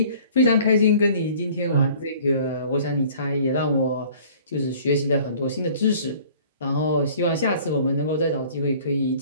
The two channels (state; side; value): inverted; both; correlation -0.51